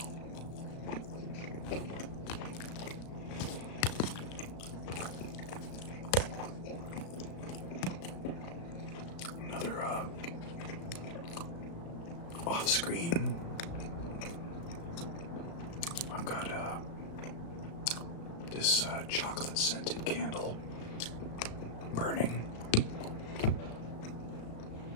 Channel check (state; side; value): late; right; 35 ms